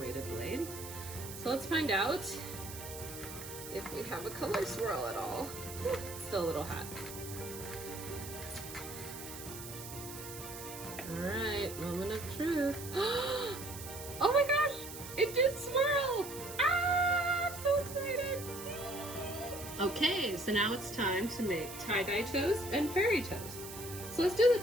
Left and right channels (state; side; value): noise; right; hiss, 11 dB below the sound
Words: blade. So let's find out if we have a color swirl at all. It's still a little hot. All right, moment of truth. Oh my gosh, it did swirl! So excited! Okay, so now it's time to make tie-dye toast and fairy toast. So let's do the